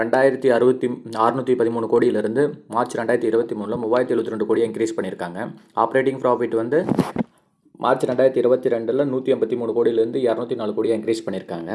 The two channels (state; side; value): identical; both; correlation 1.00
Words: கோடியிலிருந்து மார்ச் 2023 3072 கோடியை இன்க்ரீஸ் பண்ணியிருக்காங்க. ஆப்ரேட்டிங் ப்ராஃபிட் வந்து மார்ச் 2022 183 கோடியிலேருந்து 204 கோடியாக இன்க்ரீஸ் பண்ணியிருக்காங்க.